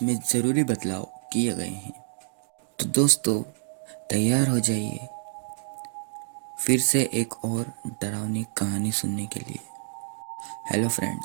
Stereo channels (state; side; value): silent; left; digital silence